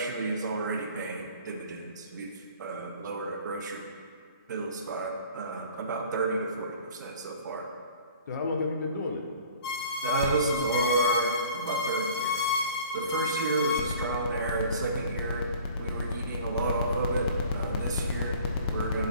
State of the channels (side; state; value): both; inverted; correlation -0.48